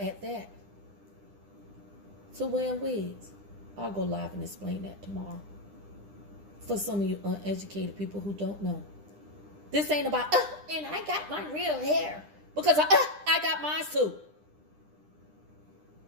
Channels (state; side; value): late; left; 9.9 ms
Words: that, to wearing wigs? I'll go live and explain that tomorrow. For some of you uneducated people who don't know. This ain't about, and I got my real hair. Because I got mine too.